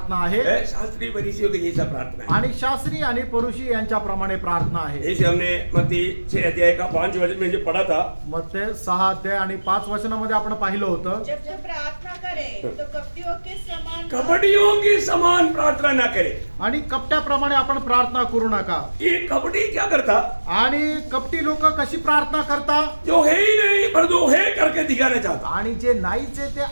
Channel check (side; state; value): both; inverted; correlation -1.00